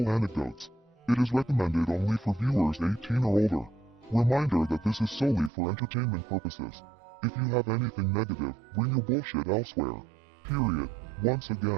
anecdotes. It is recommended only for viewers 18 or older. Reminder that this is solely for entertainment purposes. If you have anything negative, bring your bullshit elsewhere. Period. Once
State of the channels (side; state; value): left; drops out; at 5.5 s